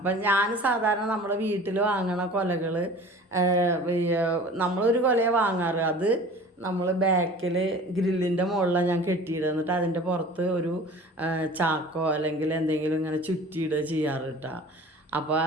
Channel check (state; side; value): normal; both; correlation 0.42